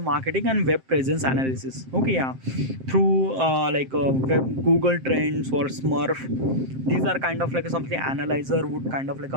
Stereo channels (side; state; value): left; late; 7.6 ms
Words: and web presence analysis. Okay, yeah, through web Google Trends or Smurf. These are kind of like something analyzer would kind of like